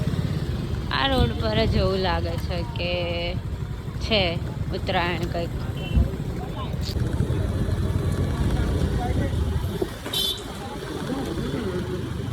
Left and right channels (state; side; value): identical; both; correlation 1.00